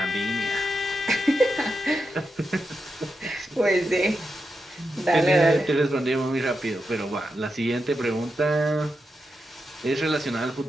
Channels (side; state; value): both; normal; correlation 0.87